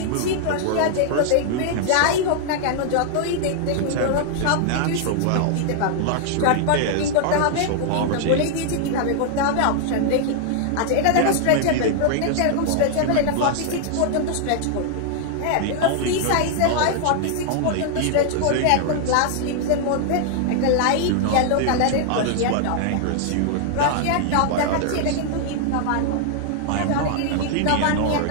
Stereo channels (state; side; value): different; both; correlation 0.00